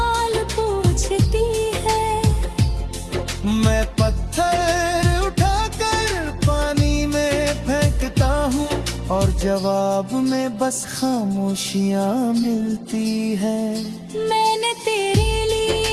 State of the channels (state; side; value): identical; both; correlation 1.00